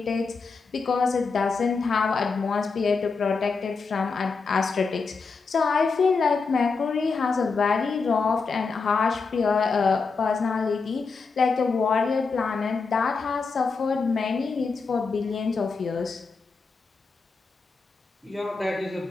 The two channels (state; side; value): quieter; right; 4.6 dB